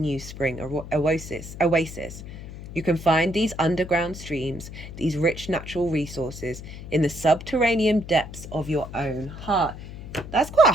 spring oasis. You can find these underground streams, these rich natural resources, in the subterranean depths of your own heart. That's quite a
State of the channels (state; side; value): noise; left; hum, 12 dB below the sound